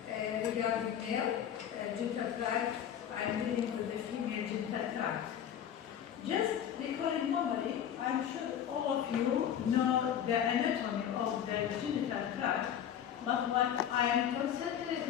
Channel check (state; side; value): quieter; right; 9.5 dB